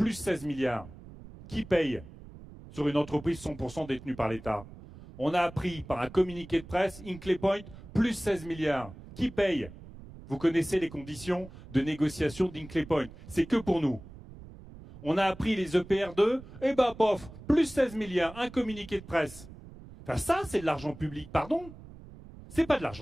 16 milliards. Qui paye sur une entreprise 100% détenue par l'État? On a appris par un communiqué de presse, Hinkley Point, plus 16 milliards. Qui paye? Vous connaissez les conditions de négociation d'Hinkley Point. C'est que pour nous. On a appris les EPR2, et ben pof, plus 16 milliards, un communiqué de presse. Enfin ça, c'est de l'argent public, pardon. C'est pas de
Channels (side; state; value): right; noise; rumble, 17 dB below the sound